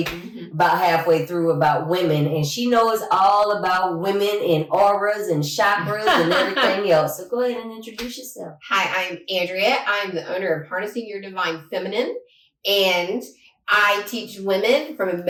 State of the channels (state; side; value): identical; both; correlation 1.00